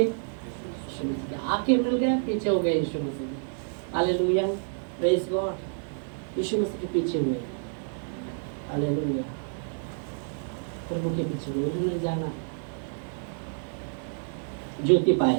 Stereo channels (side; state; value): left; silent; 59 dB below the other